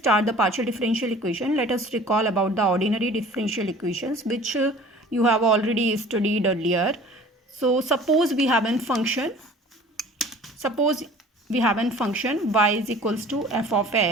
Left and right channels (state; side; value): normal; both; correlation 0.46